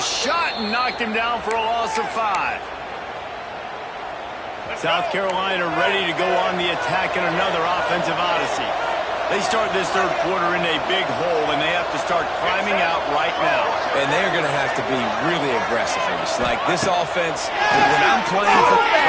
and knocked him down for a loss of 5. South Carolina ready to go on the attack in another offensive odyssey. They start this third quarter in a big hole, and they have to start climbing out right now. And they're going to have to be really aggressive here. It's like this offense, when I'm playing for...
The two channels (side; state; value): both; identical; correlation 1.00